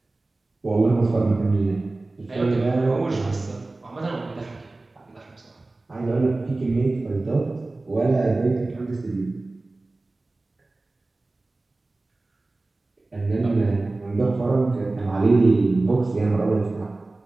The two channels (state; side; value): quieter; left; 3.1 dB